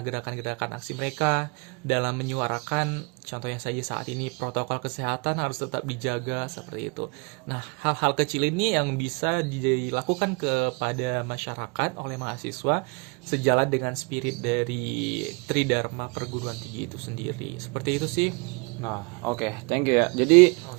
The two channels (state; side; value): quieter; left; 30.9 dB